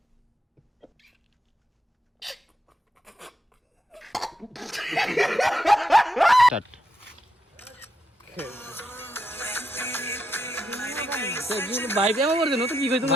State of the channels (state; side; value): normal; both; correlation 0.81